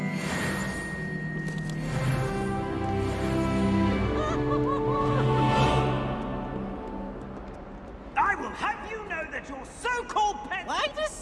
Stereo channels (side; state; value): both; identical; correlation 1.00